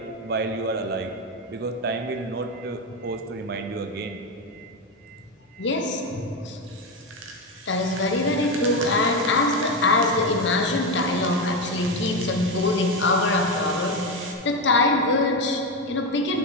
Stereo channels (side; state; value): both; normal; correlation 0.13